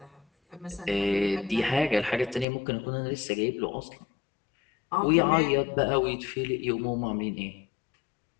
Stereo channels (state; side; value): drops out; right; at 2.5 s